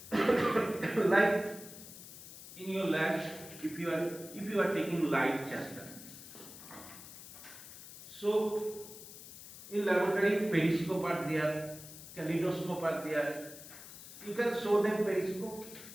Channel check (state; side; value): noise; left; hiss, 15 dB below the sound